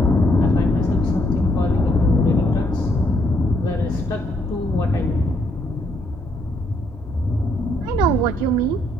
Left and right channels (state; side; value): normal; both; correlation 0.72